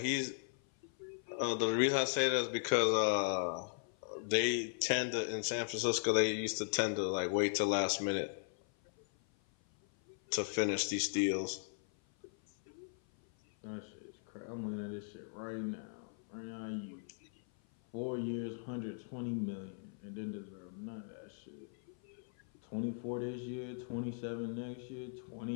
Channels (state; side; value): silent; right; 52 dB below the other